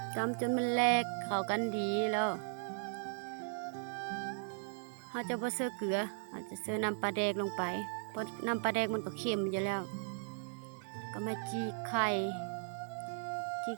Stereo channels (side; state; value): left; silent; 53 dB below the other